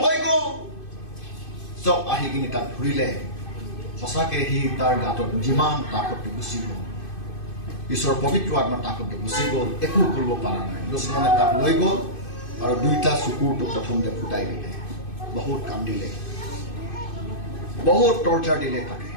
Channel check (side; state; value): right; late; 2.5 ms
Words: হৈ গ'ল চব আহি কিনি তাক ঘূৰিলে সঁচাকে সি তাৰ গাঁতত যিমান তাকতটো গুচি গ'ল ঈশ্বৰৰ পবিত্ৰ আত্মা তাকতটো গুচি গ'ল একো কৰিব পৰা নাই দুশ্মনে তাক লৈ গ'ল আৰু 2টা চকুৰটো প্ৰথমতে ফুটাই দিলে বহুত কান্দিলে বহুত টৰ্চাৰ দিলে তাকে